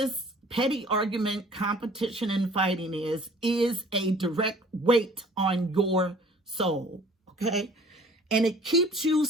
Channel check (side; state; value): both; normal; correlation 0.51